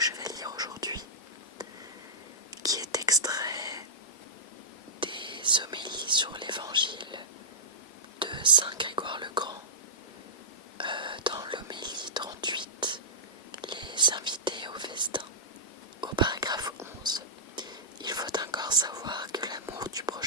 vais lire aujourd'hui, qui est extrait des homélies sur l'évangile de Saint Grégoire le Grand, dans l'homélie 38, les invités au festin. Au paragraphe 11, il faut encore savoir que l'amour du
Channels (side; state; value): both; normal; correlation -0.13